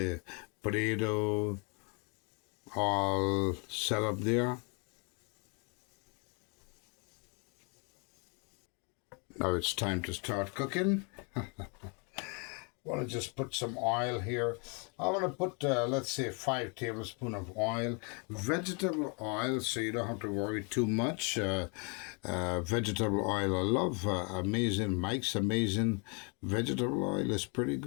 potato, all set up there. Now it's time to start cooking. Want to just put some oil here. I want to put, let's say, 5 tablespoons of oil. Vegetable oil, so you don't have to worry too much. Vegetable oil, I love Amazing. Mike's Amazing vegetable oil is pretty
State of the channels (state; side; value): quieter; right; 34.9 dB